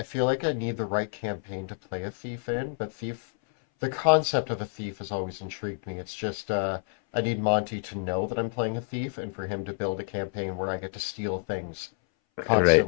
feel like I need the right campaign to play a thief in, but the concept of a thief has always intrigued me. It's just I need Monty to know that I'm playing a thief and for him to build a campaign where I get to steal things Right.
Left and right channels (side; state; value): right; silent; 59 dB below the other